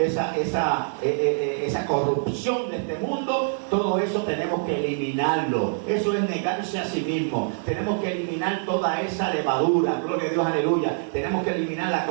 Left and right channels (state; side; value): silent; left; digital silence